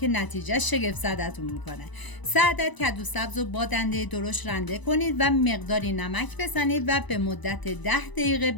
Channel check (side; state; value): right; late; 1.0 ms